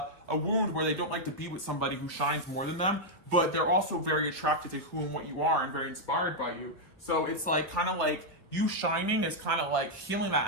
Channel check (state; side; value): normal; both; correlation -0.02